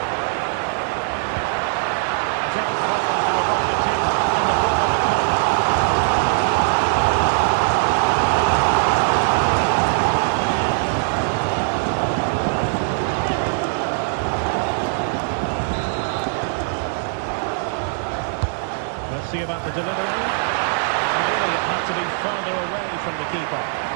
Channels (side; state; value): left; silent; digital silence